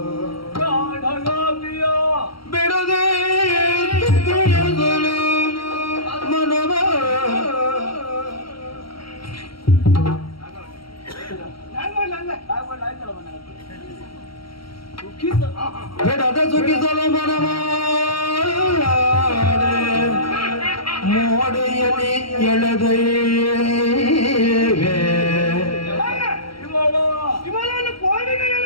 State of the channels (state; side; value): late; right; 0.74 ms